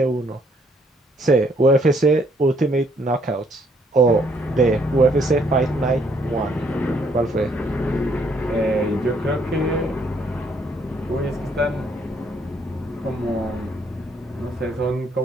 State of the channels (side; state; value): both; normal; correlation 0.68